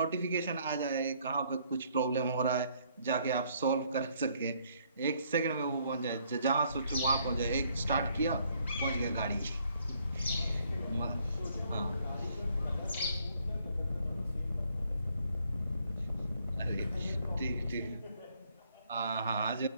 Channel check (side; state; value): both; inverted; correlation -0.67